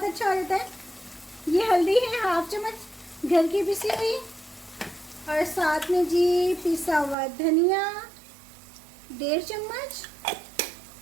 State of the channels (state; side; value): drops out; left; at 7.2 s